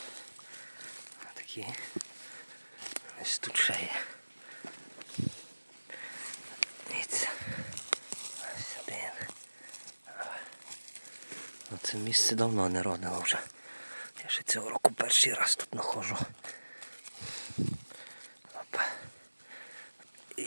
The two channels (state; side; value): inverted; both; correlation -1.00